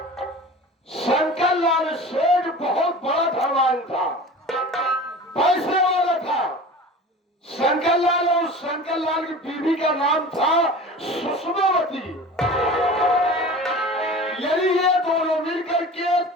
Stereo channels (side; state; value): both; normal; correlation 0.37